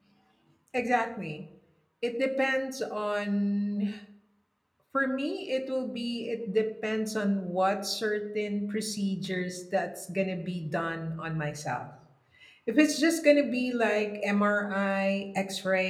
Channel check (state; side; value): identical; both; correlation 1.00